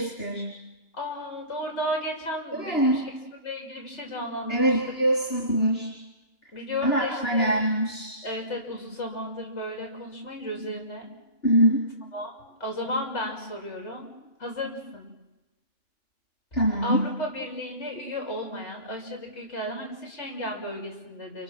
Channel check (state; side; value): late; right; 2.9 ms